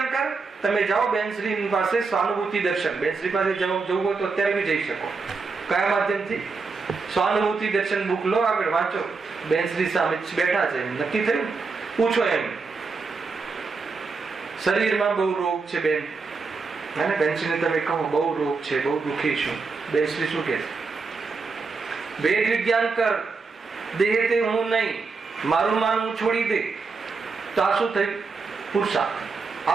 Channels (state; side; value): quieter; left; 4.5 dB